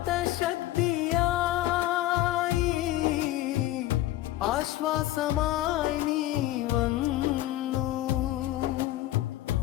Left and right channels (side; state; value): right; quieter; 15.3 dB